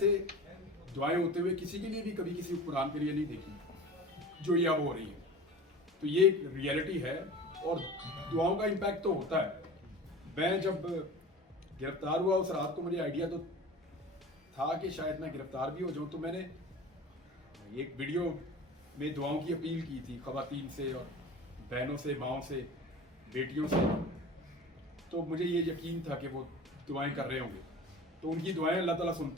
दुआएं होते हुए किसी के लिए भी कभी किसी कुरान के लिए नहीं देखी जो ये अब हो रही है। तो ये एक रियलिटी है और दुआओं का इम्पैक्ट तो होता है। मैं जब गिरफ्तार हुआ उस रात को मुझे आइडिया तो था कि शायद मैं गिरफ्तार भी हो जाऊं, तो मैंने एक वीडियो में दुआओं की अपील की थी ख़वातीन से और बहनों से, माओं से, बेटियों से। तो मुझे ये यकीन था कि वो दुआएं कर रहे होंगे, तो उनकी दुआएं अल्लाह ताला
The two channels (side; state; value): both; normal; correlation 0.36